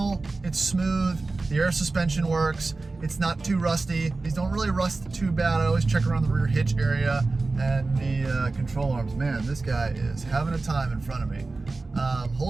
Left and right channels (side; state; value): left; quieter; 3.5 dB